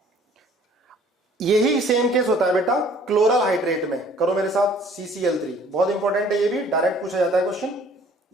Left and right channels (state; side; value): normal; both; correlation 0.55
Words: यही सेम केस होता है बेटा क्लोरल हाइड्रेट में। करो मेरे साथ, CCl3 बहुत इंपॉर्टेंट है, ये भी डायरेक्ट पूछा जाता है क्वेश्चन।